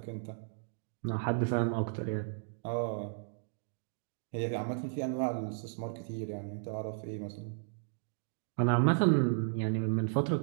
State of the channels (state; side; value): silent; left; digital silence